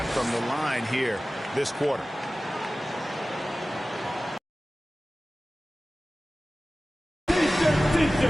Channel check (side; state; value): both; normal; correlation 0.97